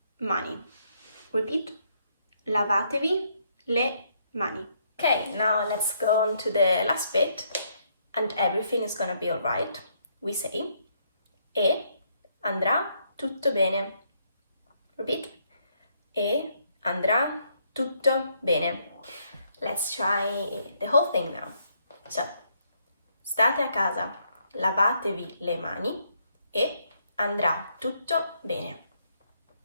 mani. Repeat. Lavatevi le mani. Okay, now let's go on to the last bit, and everything is gonna be alright. We say e andrà tutto bene. Repeat. E andrà tutto bene. Let's try the whole thing now. So, state a casa, lavatevi le mani e andrà tutto bene.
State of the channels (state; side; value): inverted; both; correlation -0.73